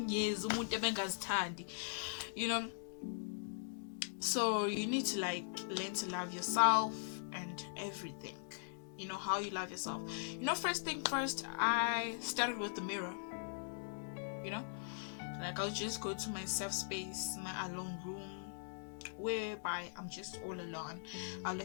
years, so you need to like learn to love yourself and everything. How you love yourself. First thing first, I started with the mirror. Like, I'll just go to my safe space, my alone room, whereby I'm just all alone. I'll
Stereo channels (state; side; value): silent; right; digital silence